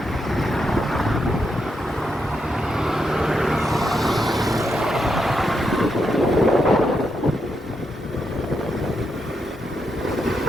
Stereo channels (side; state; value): both; normal; correlation 0.82